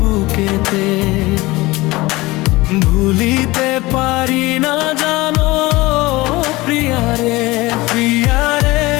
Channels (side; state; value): right; quieter; 20.8 dB